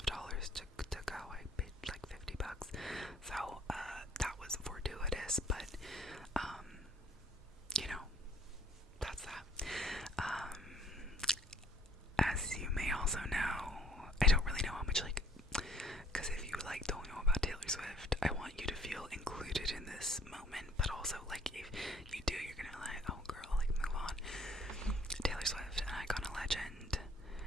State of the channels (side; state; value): both; normal; correlation 0.57